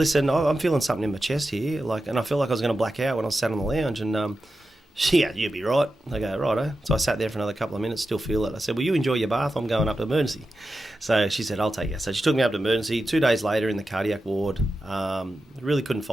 I'm feeling something in my chest here. And I felt like I was going to black out when I sat on the lounge. And you'll be right. I go, righto. So I sat there for another couple of minutes, still feel it. I said, well, you enjoy your bath. I'm going up to emergency. So she said, I'll take you. So she took me up to emergency. 2 days later in the cardiac ward, really couldn't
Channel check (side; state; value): both; normal; correlation 0.91